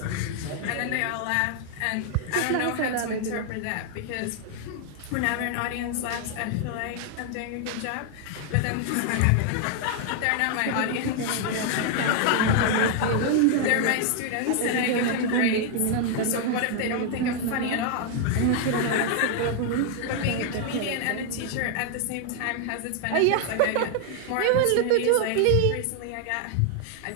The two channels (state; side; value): different; both; correlation 0.00